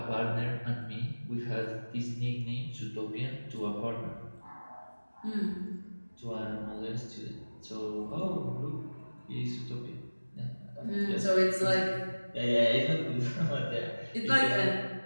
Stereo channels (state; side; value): inverted; both; correlation -1.00